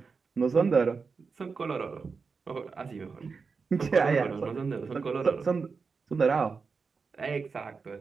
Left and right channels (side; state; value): left; quieter; 5.0 dB